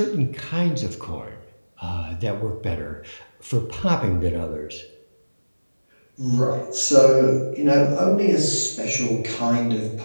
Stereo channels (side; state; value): both; inverted; correlation -1.00